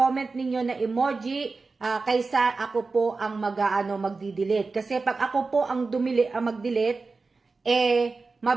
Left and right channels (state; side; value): quieter; left; 4.0 dB